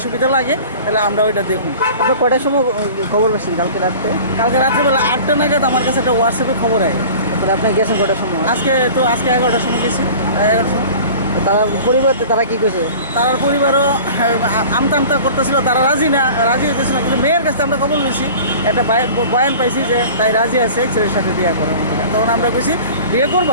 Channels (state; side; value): inverted; both; correlation -0.41